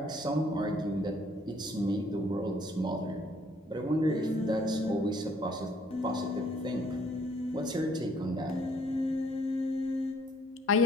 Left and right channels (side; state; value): both; normal; correlation 0.62